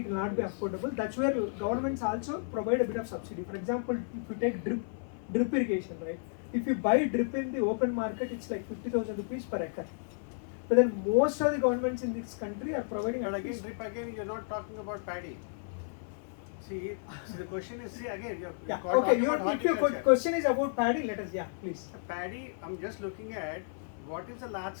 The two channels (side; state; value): right; silent; 56 dB below the other